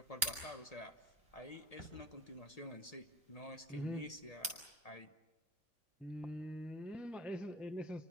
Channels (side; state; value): both; normal; correlation 0.35